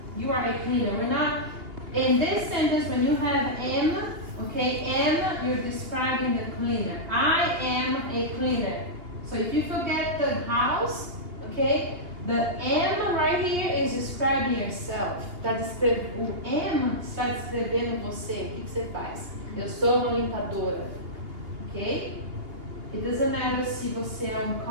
You are a cleaner. We're not, in this sentence, when you have am, okay, am, you're describing the cleaner. I am a cleaner. So if you forget the house, okay, the am right here is describing yourself. O am está descrevendo você. O que você faz? Eu sou uma limpadora. Ok? It doesn't matter se você é um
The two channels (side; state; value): left; late; 2.8 ms